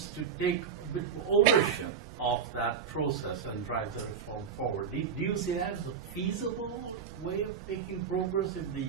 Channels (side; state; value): left; quieter; 6.9 dB